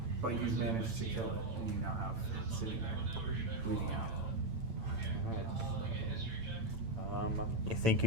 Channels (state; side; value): late; left; 8.9 ms